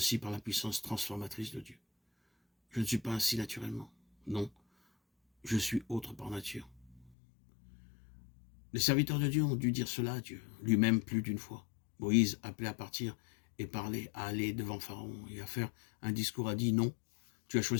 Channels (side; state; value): right; drops out; at 7.1 s